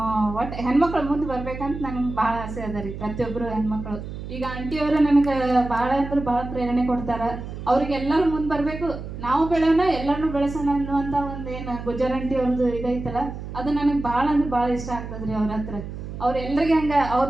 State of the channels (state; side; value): noise; right; hum, 9 dB below the sound